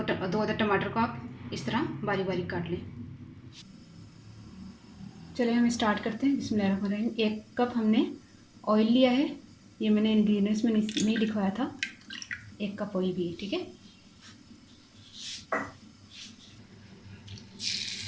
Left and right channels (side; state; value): both; identical; correlation 1.00